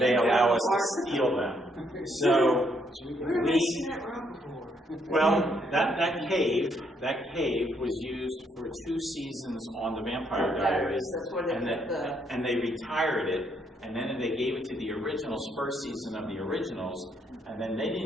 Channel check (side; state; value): both; normal; correlation 0.72